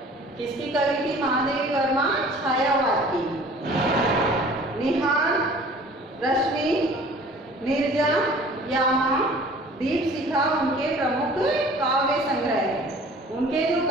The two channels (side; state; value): both; normal; correlation 0.48